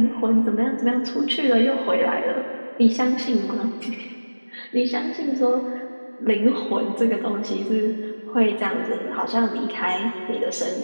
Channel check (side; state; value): both; inverted; correlation -1.00